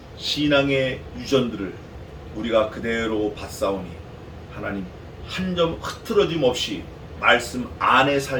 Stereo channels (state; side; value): identical; both; correlation 1.00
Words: 신앙의 유전들을 우리가 그대로 받사오니 하나님 한 점 흐트러짐 없이 말씀 안에